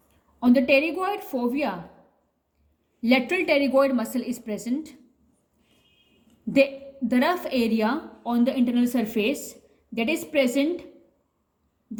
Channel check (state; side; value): identical; both; correlation 1.00